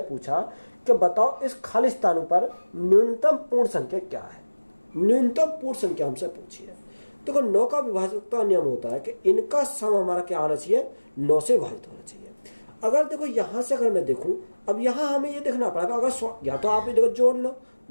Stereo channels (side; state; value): both; inverted; correlation -1.00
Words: पूछा कि बताओ इस खाली स्थान पर न्यूनतम पूर्ण संख्या क्या है। न्यूनतम पूर्ण संख्या हमसे पूछी है। देखो 9 का विभाजकता नियम होता है कि इनका सम हमारा क्या आना चाहिए, 9 से विभाजित होना चाहिए। अगर देखो यहाँ से अगर मैं देखूँ, अब यहाँ हमें ये देखना पड़ेगा, अगर या तो आप ये देखो जोड़ लो,